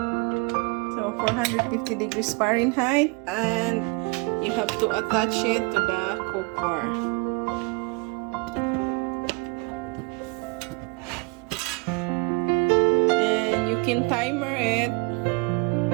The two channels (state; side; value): quieter; left; 29.6 dB